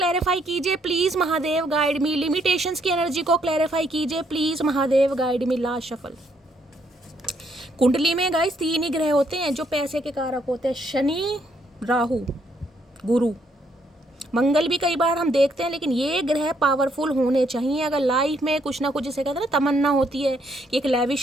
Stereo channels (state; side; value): normal; both; correlation 0.71